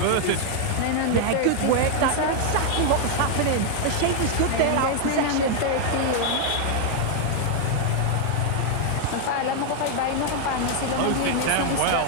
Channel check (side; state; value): both; different; correlation 0.00